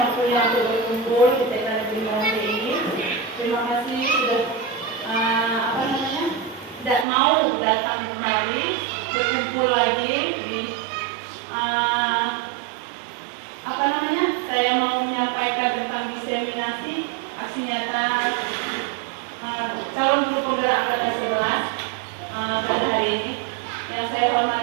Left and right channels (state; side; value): drops out; left; at 7.1 s